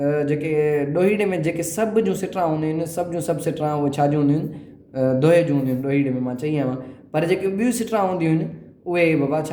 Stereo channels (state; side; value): identical; both; correlation 1.00